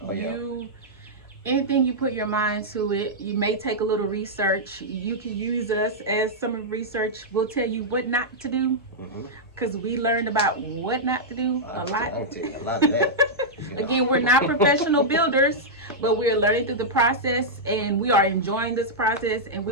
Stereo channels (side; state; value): both; normal; correlation -0.08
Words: Oh, yeah. Anything you put your mind to it, you may take a little research. You can use us as some research. We'll tell you what not to do because we learned about what not to do a lot. I'll tell you a lot of that. Again, we're not professional builders, but we're learning through the process, and we are enjoying this process, and